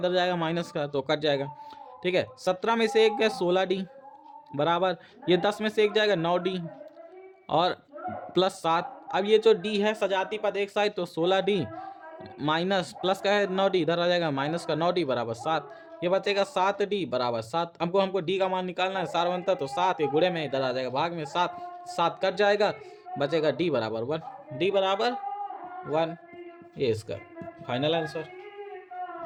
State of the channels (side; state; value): both; identical; correlation 1.00